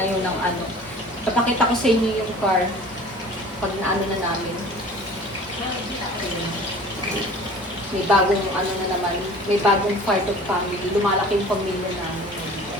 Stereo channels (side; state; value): both; normal; correlation 0.45